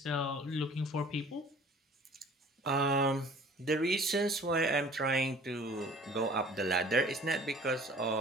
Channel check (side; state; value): both; normal; correlation 0.49